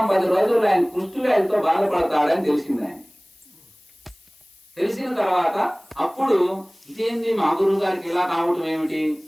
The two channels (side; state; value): left; noise; hiss, 29 dB below the sound